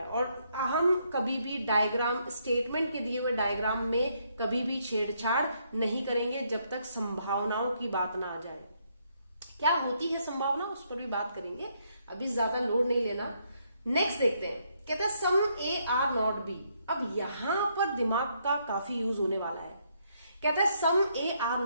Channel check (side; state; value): both; inverted; correlation -0.73